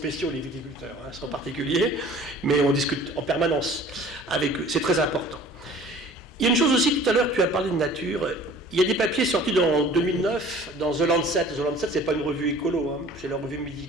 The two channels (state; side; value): normal; both; correlation 0.48